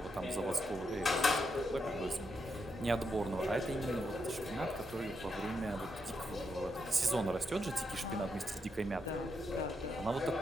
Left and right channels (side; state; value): both; normal; correlation 0.82